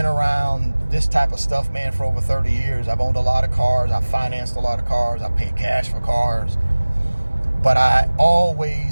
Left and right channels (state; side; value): inverted; both; correlation -1.00